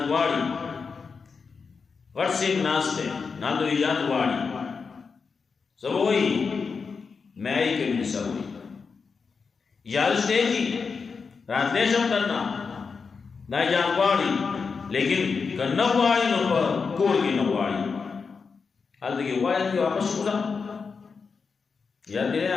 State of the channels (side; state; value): right; quieter; 5.2 dB